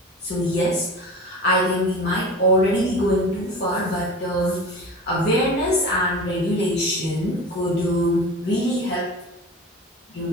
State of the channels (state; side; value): normal; both; correlation 0.35